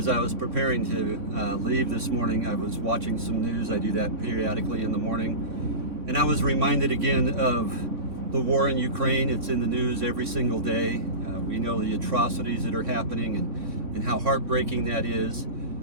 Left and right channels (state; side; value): late; left; 3.6 ms